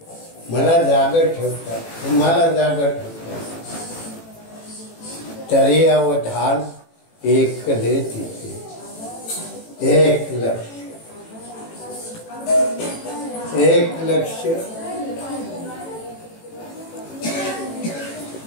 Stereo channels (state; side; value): late; right; 18 ms